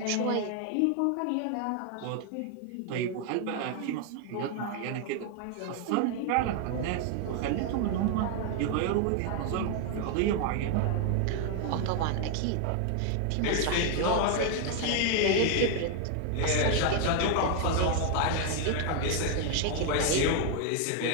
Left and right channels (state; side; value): different; both; correlation 0.00